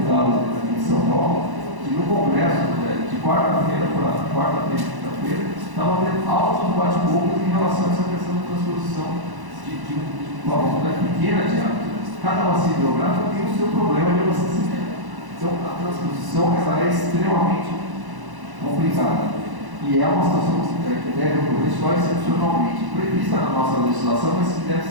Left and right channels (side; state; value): left; late; 1.0 ms